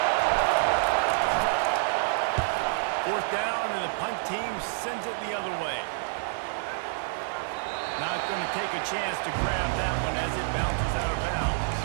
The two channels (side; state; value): left; silent; digital silence